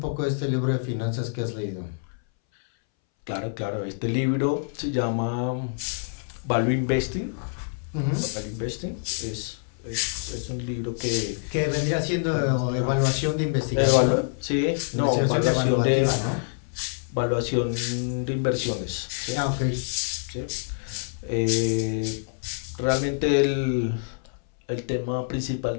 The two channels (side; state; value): right; silent; 61 dB below the other